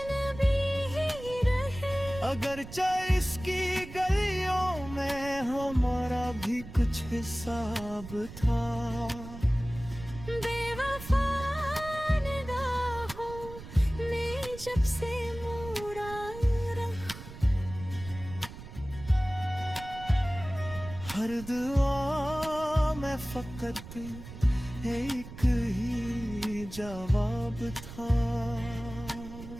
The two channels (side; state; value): right; noise; rumble, 13 dB below the sound